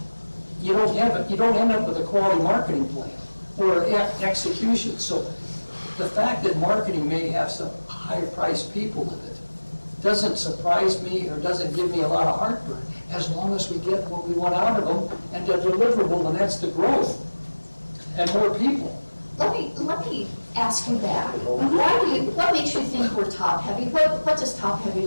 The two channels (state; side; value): inverted; both; correlation -1.00